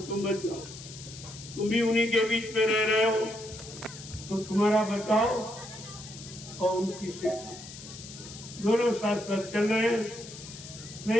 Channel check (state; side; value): noise; left; hiss, 14 dB below the sound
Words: बच जाओ। तुम भी उन्हीं के बीच में रह रहे हो, तो तुम्हारा बचाओ और उनकी शिक्षा, दोनों साथ साथ चल रहे हैं।